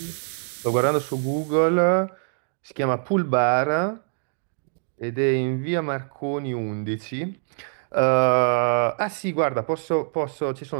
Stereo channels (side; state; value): left; silent; digital silence